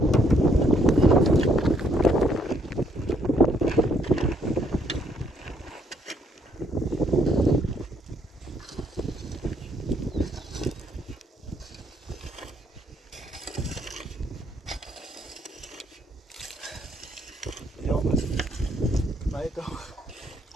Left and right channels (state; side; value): normal; both; correlation 0.69